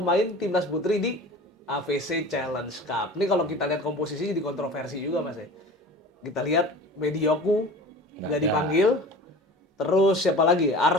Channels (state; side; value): normal; both; correlation 0.39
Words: timnas putri di AVC Challenge Cup. Ini kalau kita lihat komposisinya jadi kontroversi juga mas ya. Kita lihat Medioku Nggak nggak ada. dipanggil. Terus siapa lagi?